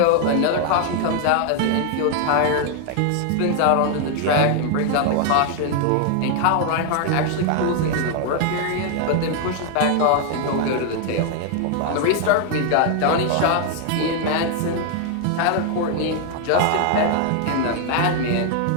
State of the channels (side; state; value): both; different; correlation 0.00